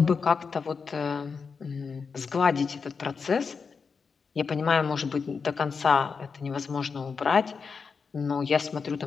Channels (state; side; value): quieter; right; 5.4 dB